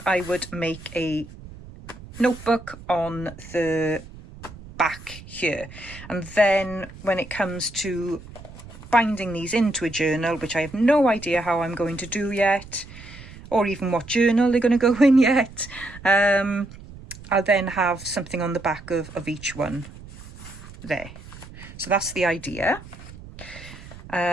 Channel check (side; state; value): right; noise; rumble, 17 dB below the sound